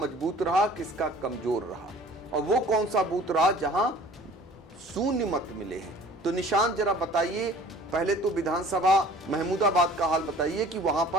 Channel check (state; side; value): normal; both; correlation 0.48